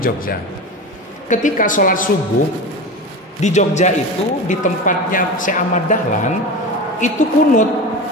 Ketika sholat subuh di Jogja itu di tempatnya Syekh Ahmad Dahlan itu kunut.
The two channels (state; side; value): normal; both; correlation 0.27